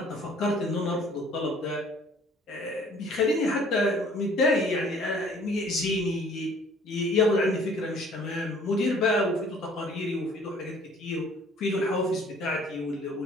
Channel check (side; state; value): both; normal; correlation 0.54